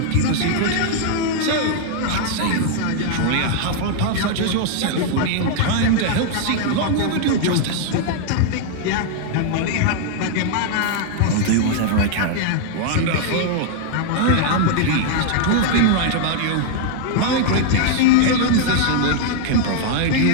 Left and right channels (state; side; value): different; both; correlation 0.00